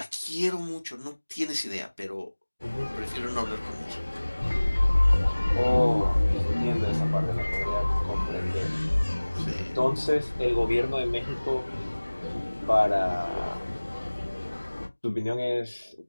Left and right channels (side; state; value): both; inverted; correlation -1.00